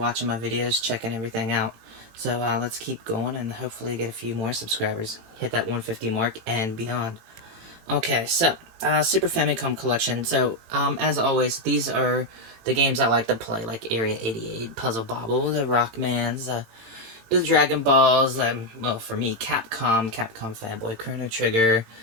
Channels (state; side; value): late; left; 18 ms